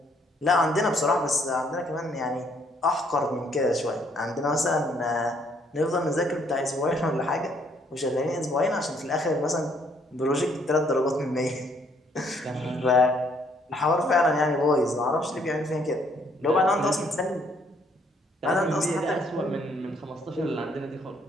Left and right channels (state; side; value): normal; both; correlation 0.67